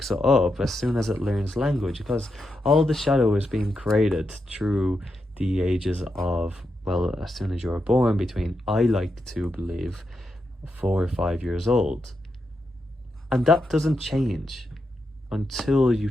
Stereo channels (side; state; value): both; normal; correlation 0.85